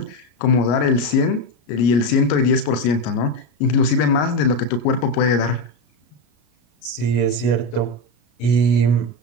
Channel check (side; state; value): right; late; 33 ms